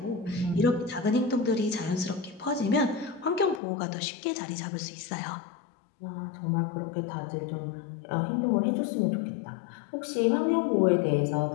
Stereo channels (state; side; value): drops out; right; at 3.6 s